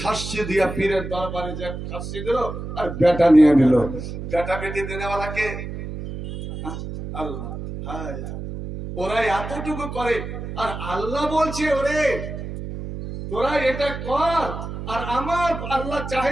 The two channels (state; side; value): noise; right; hum, 8 dB below the sound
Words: খাসি দিয়া পীরের দরবারে যে খাসি দিল আর বেটা নিয়ে নিল। বেটা বেটি দেনেওয়ালাকে আল্লাহ। ওরা এতটুকু করে, আর আল্লাহ বলছে ওরে তোরা এটা কর। আর আমার আল্লাহ